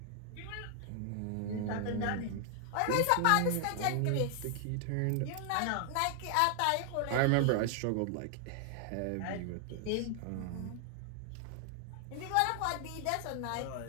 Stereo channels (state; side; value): different; both; correlation 0.00